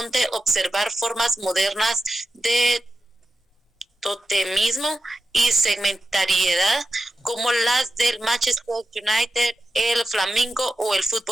observar formas modernas de totemismo y segmentariedad como las del Manchester United, el Flamengo o el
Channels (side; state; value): both; normal; correlation 0.91